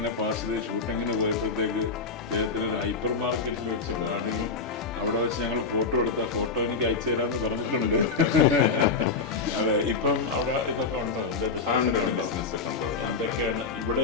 പാസ് ചെയ്ത് ഷൂട്ടിങ്ങിന് പോയപ്പോഴത്തേക്ക് അദ്ദേഹത്തിന് ഒരു ഹൈപ്പർ മാർക്കറ്റിൽ വെച്ച് കാണുകയും അവിടെ വെച്ച് ഞങ്ങൾ ഫോട്ടോ എടുത്ത ഫോട്ടോ എനിക്ക് അയച്ചു തരാമെന്ന് പറഞ്ഞിട്ടുണ്ട്. അതെ, ഇപ്പം അവിടെ ഇതൊക്കെ ഉണ്ടോ? എന്താ ബിസിനസ്സൊക്കെ ഉണ്ടോ? എന്തൊക്കെയാണ്?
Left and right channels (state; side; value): quieter; right; 4.6 dB